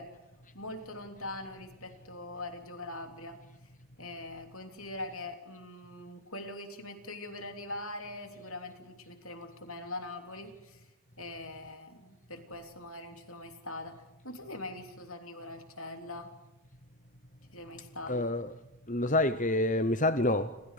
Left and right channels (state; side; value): normal; both; correlation 0.09